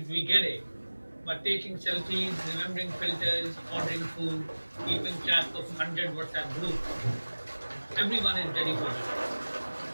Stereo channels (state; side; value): inverted; both; correlation -1.00